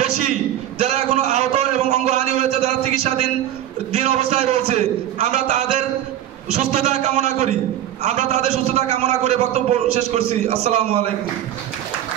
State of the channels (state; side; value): quieter; left; 11.9 dB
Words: বেশি যারা এখনো আহত এবং অঙ্গহানি হয়েছে, যারা চিকিৎসাধীন অবস্থায় রয়েছে। আমরা তাদের সুস্থতা কামনা করি, আমরা তাদের সুস্থতা কামনা করে বক্তব্য শেষ করছি। আসসালামু আলাইকুম।